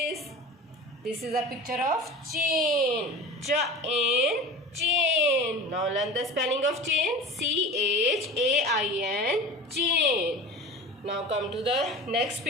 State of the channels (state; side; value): normal; both; correlation 0.36